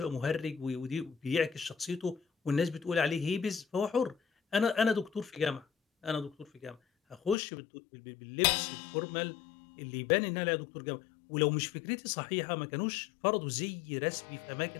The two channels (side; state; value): right; drops out; at 7.4 s